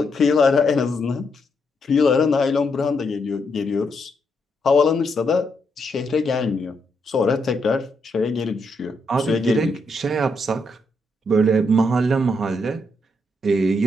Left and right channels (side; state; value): both; normal; correlation 0.79